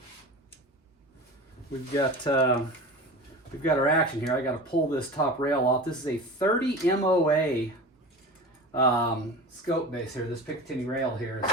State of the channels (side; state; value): both; normal; correlation 0.33